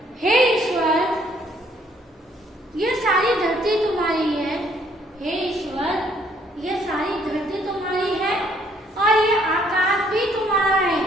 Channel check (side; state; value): both; normal; correlation 0.65